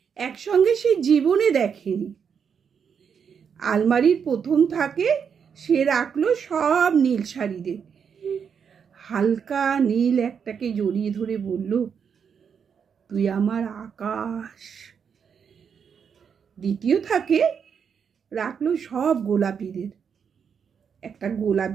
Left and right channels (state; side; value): quieter; left; 7.0 dB